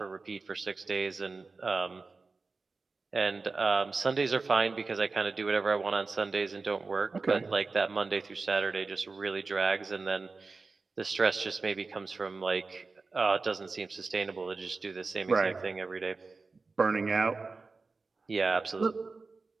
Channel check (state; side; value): quieter; left; 4.0 dB